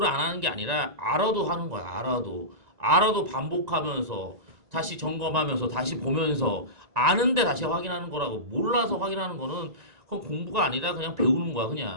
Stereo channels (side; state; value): left; late; 1.9 ms